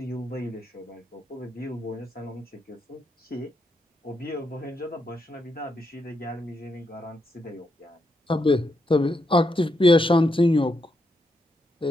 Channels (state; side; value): normal; both; correlation 0.81